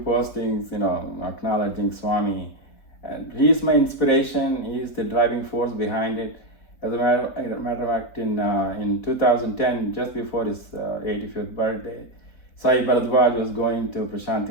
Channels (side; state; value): right; late; 4.2 ms